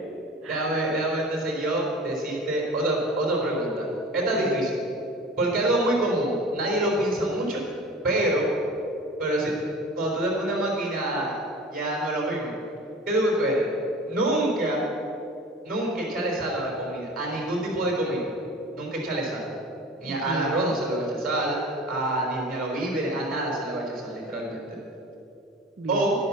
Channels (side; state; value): both; normal; correlation 0.39